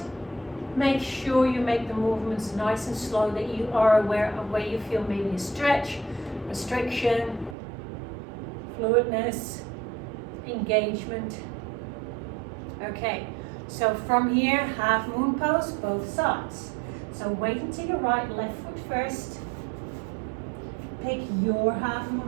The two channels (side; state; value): left; drops out; at 7.6 s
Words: make sure you make the movements nice and slow, that you are aware of where you feel maybe a stretch, restriction, fluidness, engagement. Okay, so from here, half moon pose, both sides. So weight into your right, left foot first. Pick your half